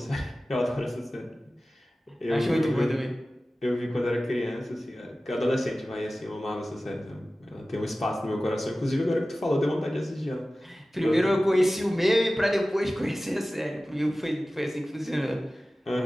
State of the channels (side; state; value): both; normal; correlation 0.96